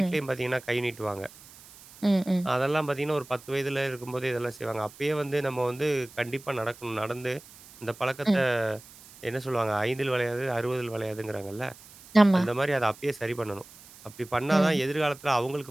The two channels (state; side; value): noise; right; hiss, 21 dB below the sound